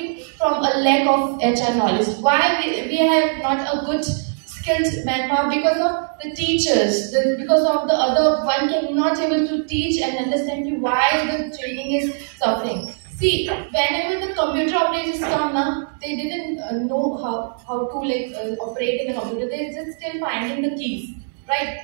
from a lack of HR knowledge. Why we have not a good skilled manpower? Because of the teachers, because of the other one cannot able to teach and understand you why the training is suffering. See, whenever the computer operators come now, they didn't know how to operate in a computer. They just still finding the keys, right?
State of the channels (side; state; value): left; silent; digital silence